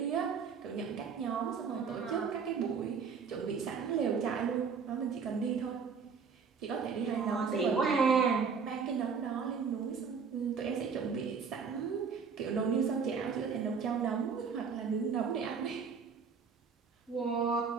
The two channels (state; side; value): quieter; left; 5.9 dB